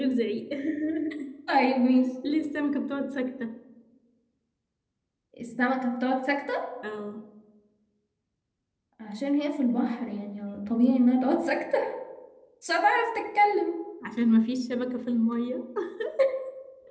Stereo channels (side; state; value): both; identical; correlation 1.00